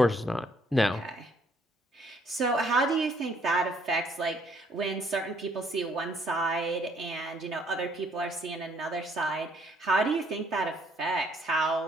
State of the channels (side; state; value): both; normal; correlation 0.65